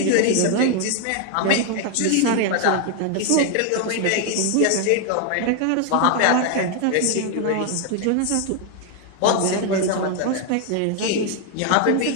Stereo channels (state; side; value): different; both; correlation 0.01